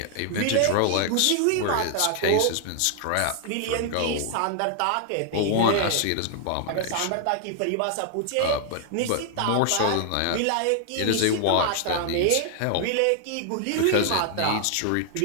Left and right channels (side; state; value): both; different; correlation 0.00